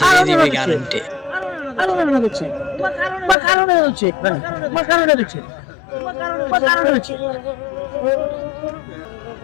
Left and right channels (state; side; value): drops out; right; at 3.4 s